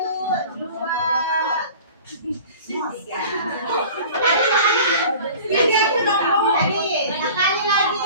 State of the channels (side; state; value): both; inverted; correlation -0.42